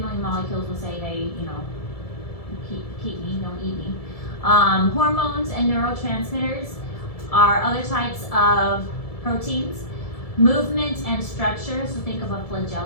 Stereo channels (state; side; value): late; right; 1.7 ms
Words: molecules will say, hey, you know, keep me, don't eat me. Hormones and neurotransmitters are other types of proteins. Movement and structure, so think of a